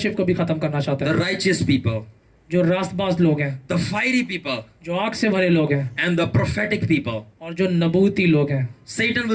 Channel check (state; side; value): identical; both; correlation 1.00